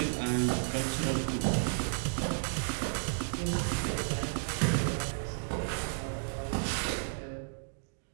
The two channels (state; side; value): silent; left; digital silence